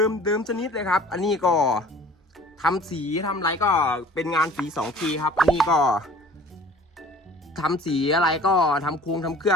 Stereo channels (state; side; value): normal; both; correlation 0.48